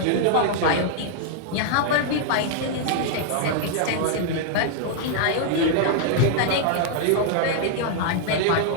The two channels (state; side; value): different; both; correlation -0.01